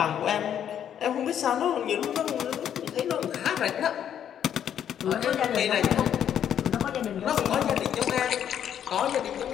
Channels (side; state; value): right; quieter; 9.5 dB